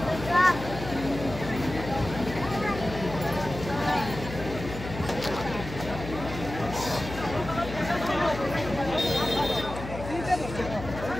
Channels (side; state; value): left; noise; hum, 9 dB below the sound